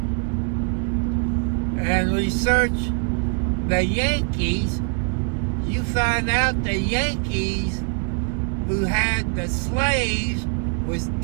And research the Yankees. You find out the Yankees who had the slaves was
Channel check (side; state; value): left; quieter; 39.1 dB